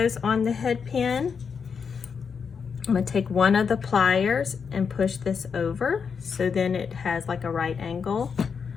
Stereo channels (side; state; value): right; quieter; 6.1 dB